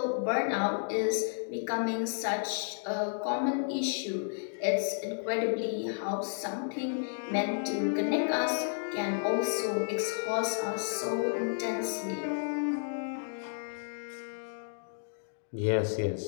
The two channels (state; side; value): silent; right; digital silence